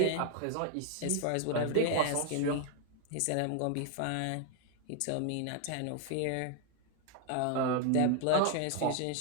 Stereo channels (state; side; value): different; both; correlation 0.00